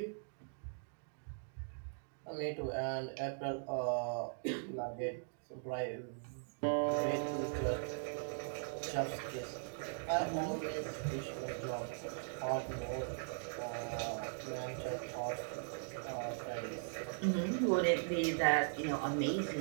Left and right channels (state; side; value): silent; left; digital silence